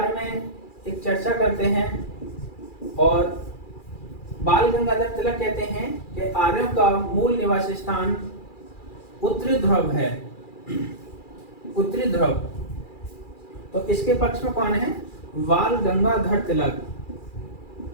में एक चर्चा करते हैं। और बाल गंगाधर तिलक कहते हैं कि आर्यों का मूल निवास स्थान उत्तरी ध्रुव है, उत्तरी ध्रुव। तो इसके पक्ष में कौन है? बाल गंगाधर तिलक,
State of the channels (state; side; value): late; right; 2.4 ms